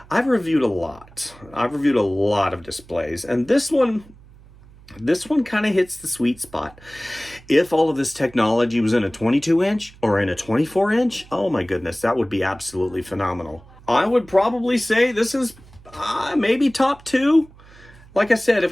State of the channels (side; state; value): right; noise; hum, 23 dB below the sound